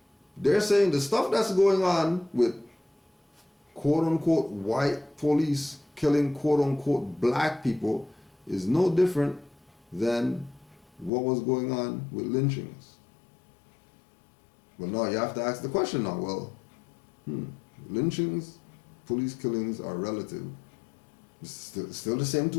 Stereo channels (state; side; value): drops out; right; at 11.1 s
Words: They're saying the stuff that's going on with quote-unquote white police killing quote-unquote black people is no different than what was going on with lynchings. Well, now you have to ask the question now, well, lynchings, police killings are relative. It's still the same